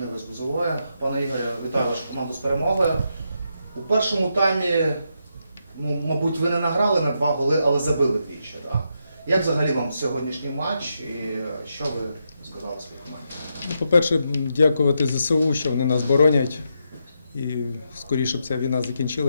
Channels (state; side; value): inverted; both; correlation -0.82